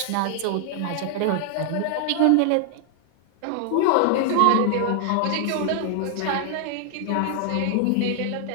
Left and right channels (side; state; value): both; different; correlation 0.00